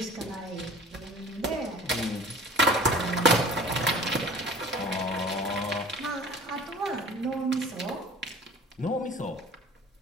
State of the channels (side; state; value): both; normal; correlation 0.44